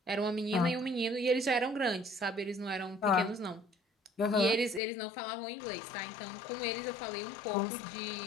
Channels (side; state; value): right; drops out; at 4.8 s